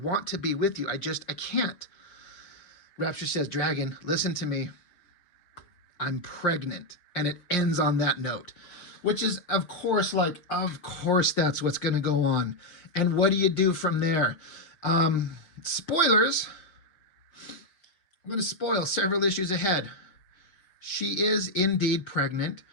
to be with you. I can't. Rapture says, Dragon, listen to me. I'm pregnant. And it ends on that note. Which is, of course, that's what's going to go on. And what do you do from there? Spoilers. I'm going to spoil several issues ahead. She is indeed pregnant.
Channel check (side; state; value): right; late; 5.6 ms